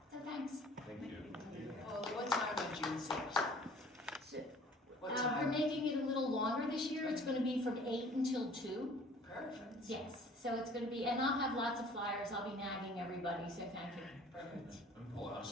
So thanks. Thank you. Well, what time on June 6th? So, What we're time? making it a little longer this year. It's going to be from 8 until 2. Perfect. Yes, so it's going to be, and I'll have lots of flyers. I'll be nagging everybody, so thank you. Perfect. I'm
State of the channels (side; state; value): both; normal; correlation 0.51